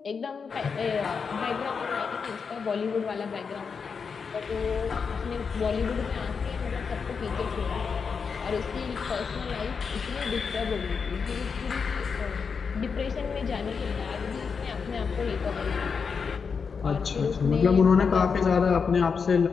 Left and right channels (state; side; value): quieter; right; 5.7 dB